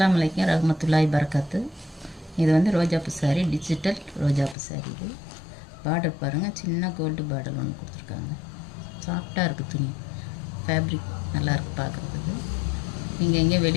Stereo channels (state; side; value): drops out; right; at 4.5 s